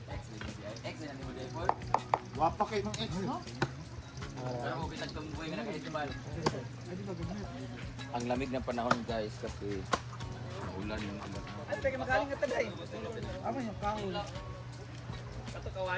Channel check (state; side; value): identical; both; correlation 1.00